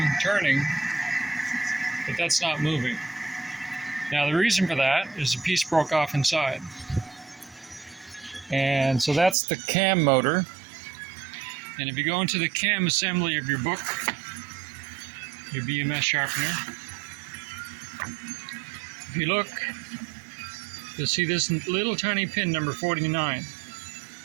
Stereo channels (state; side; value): drops out; left; at 9.3 s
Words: turning, but that's not moving. Now the reason for that is a piece broke off inside. And so that's the cam motor. And if you go into the cam assembly of your book, your BMS sharpener, if you look, you'll see this little tiny pin, number 49.